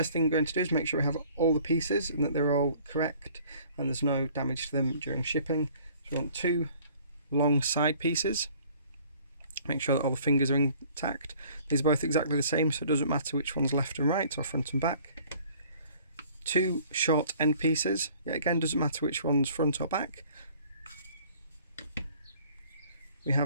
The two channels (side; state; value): both; inverted; correlation -0.55